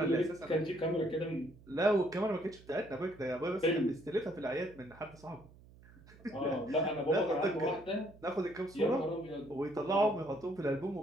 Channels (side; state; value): right; noise; hum, 23 dB below the sound